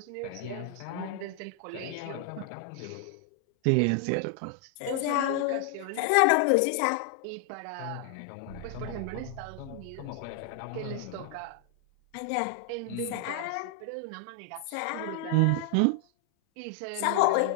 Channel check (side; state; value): both; different; correlation 0.00